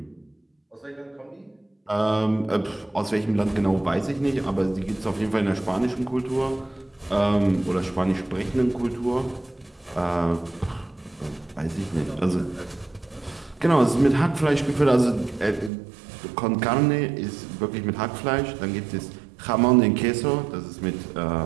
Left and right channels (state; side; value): drops out; left; at 15.7 s